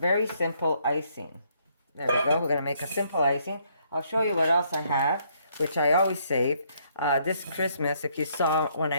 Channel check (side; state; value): both; inverted; correlation -0.70